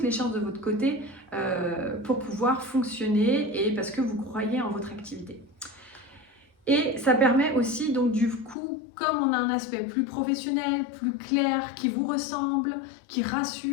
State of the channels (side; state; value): right; drops out; at 8.6 s